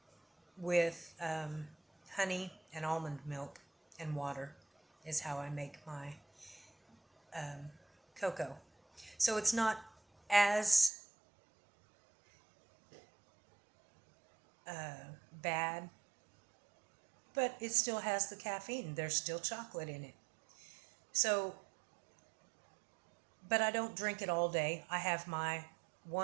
with honey and almond milk and water is how I make my cocoa. So it's not as bad, but it still has the caffeine. There's still chocolate in it. So, but I don't drink it all day. I have my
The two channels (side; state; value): left; drops out; at 10.9 s